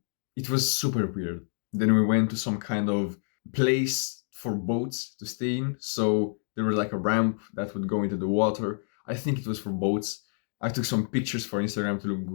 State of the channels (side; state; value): right; silent; 59 dB below the other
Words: it was super weird. Then we went to some kind of place for boats to stay in, so there was like a ramp that would go into the water. I think it was for boats. I took some pictures for Instagram to look